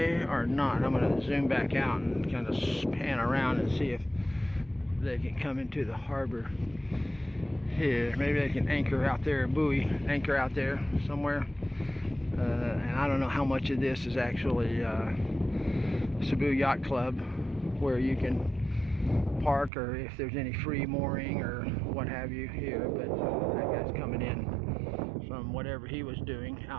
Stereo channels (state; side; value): drops out; left; at 19.7 s